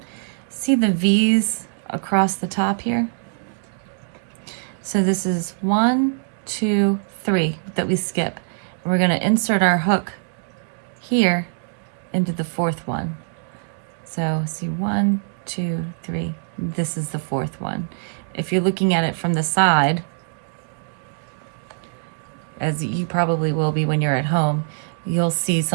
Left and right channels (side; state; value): left; silent; digital silence